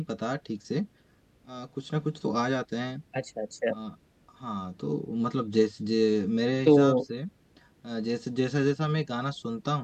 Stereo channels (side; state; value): both; identical; correlation 1.00